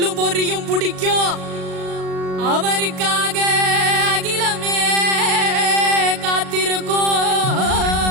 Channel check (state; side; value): late; left; 38 ms